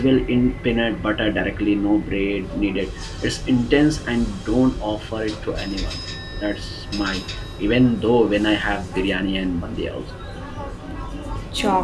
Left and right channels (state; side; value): identical; both; correlation 1.00